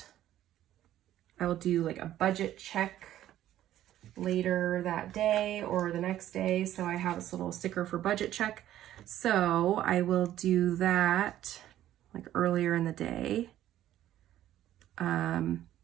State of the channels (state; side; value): quieter; left; 12.7 dB